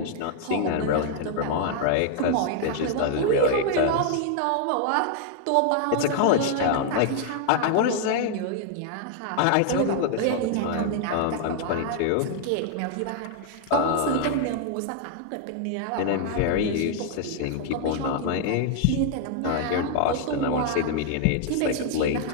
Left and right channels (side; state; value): both; different; correlation 0.00